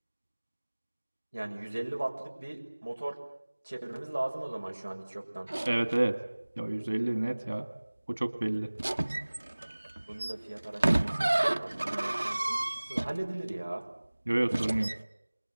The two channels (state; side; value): inverted; both; correlation -1.00